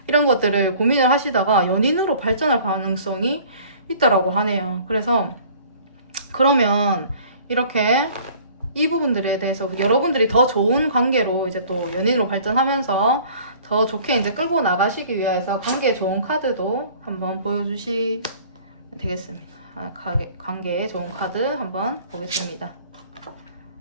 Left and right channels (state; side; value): inverted; both; correlation -0.50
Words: 이런 것들을 고민을 하시다가 연인으로 발전할 가능성이 있다라고 하네요. 그래서 그러면 이렇게 이 부분들에 대해서 여러분들이 더 좋은 관계로 이제 또 연인으로 발전하면서 더 좋게 이제 끌고 나가시기 위해서 관계에 좋은 카드도 한번 보여주시면 되겠습니다. 관계에 좋은 카드 한번 보겠습니다.